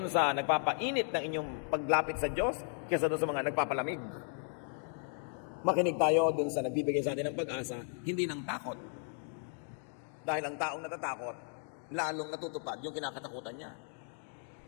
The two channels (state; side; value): silent; right; 54 dB below the other